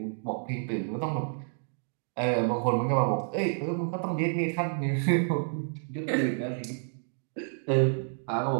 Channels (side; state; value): left; silent; digital silence